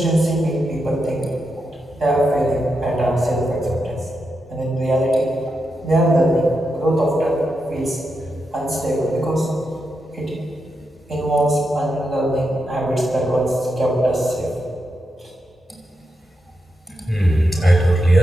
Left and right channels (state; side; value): normal; both; correlation 0.86